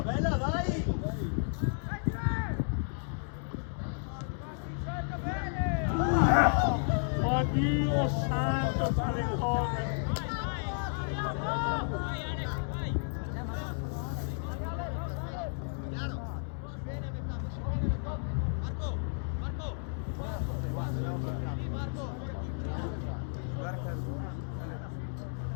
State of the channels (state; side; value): silent; right; 56 dB below the other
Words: Bella, dai! Ma Dio santo, tale cose.